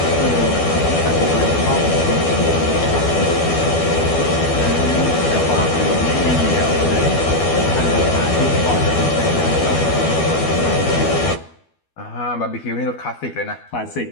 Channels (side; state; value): right; late; 12 ms